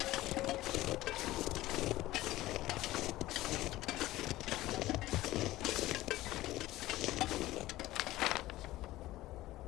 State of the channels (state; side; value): quieter; right; 16.7 dB